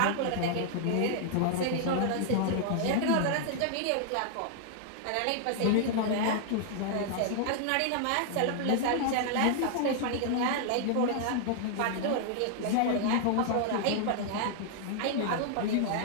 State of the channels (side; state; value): both; different; correlation -0.01